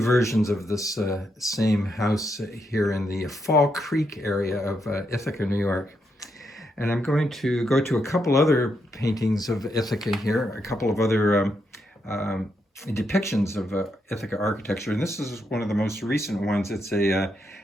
of this same house here in the Fall Creek area of Ithaca, New York. And I'm going to go to a couple other paintings of Ithaca here, a couple of other depictions of Ithaca architecture. And this is one of the most recent ones. It's a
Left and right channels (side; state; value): both; normal; correlation 0.80